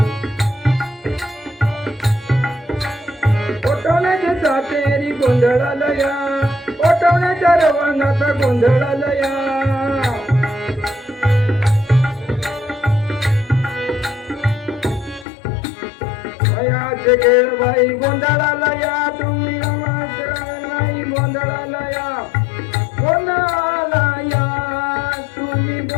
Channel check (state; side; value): drops out; right; at 15.2 s